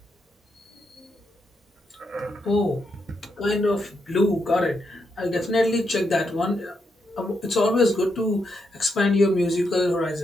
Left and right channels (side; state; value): both; normal; correlation 0.81